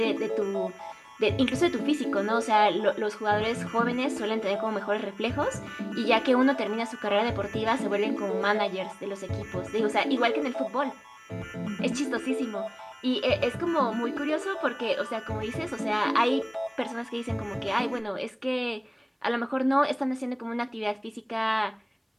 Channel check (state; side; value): identical; both; correlation 1.00